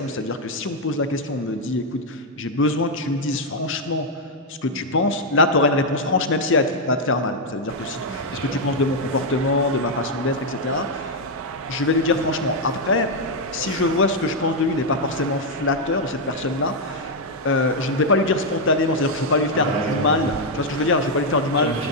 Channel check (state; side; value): normal; both; correlation 0.00